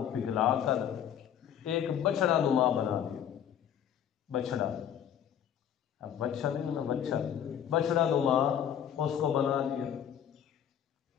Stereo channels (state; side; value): quieter; right; 9.4 dB